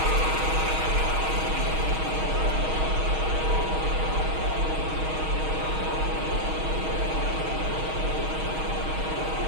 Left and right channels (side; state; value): left; late; 6.3 ms